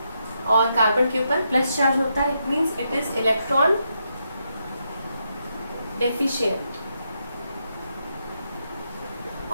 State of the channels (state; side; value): inverted; both; correlation -0.82